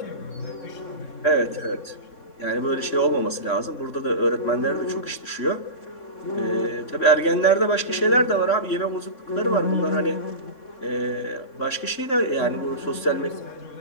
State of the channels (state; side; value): late; right; 3.7 ms